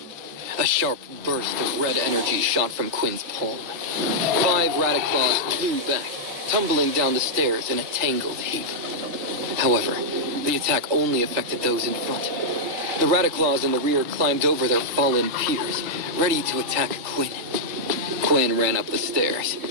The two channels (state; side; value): late; left; 3.8 ms